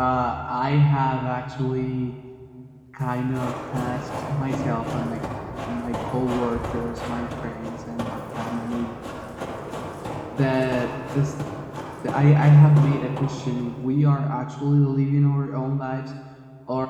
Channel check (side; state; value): both; identical; correlation 1.00